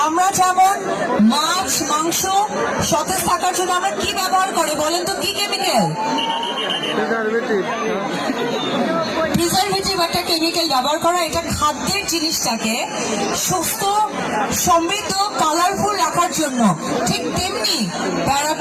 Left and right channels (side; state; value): both; identical; correlation 1.00